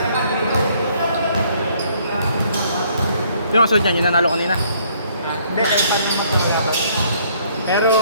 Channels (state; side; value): inverted; both; correlation -0.64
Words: Yung kasunod niyan, yung nanalo kanina. Hindi, kahit paano yung mapagyabat. Pero,